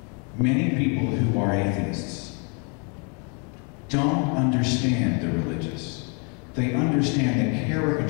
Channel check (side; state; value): right; quieter; 36.2 dB